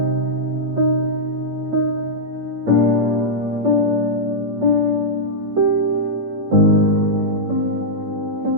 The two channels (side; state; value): left; late; 8.8 ms